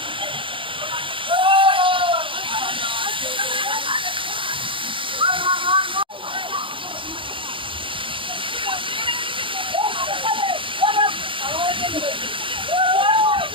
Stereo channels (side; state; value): left; late; 0.25 ms